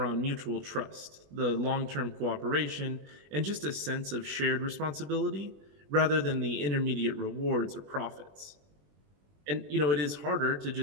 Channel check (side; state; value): left; late; 21 ms